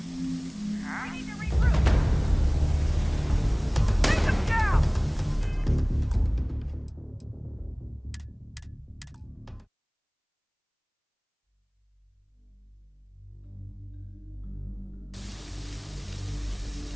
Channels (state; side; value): identical; both; correlation 1.00